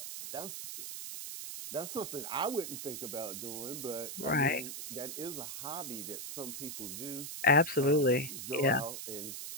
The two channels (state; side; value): noise; right; hiss, 7 dB below the sound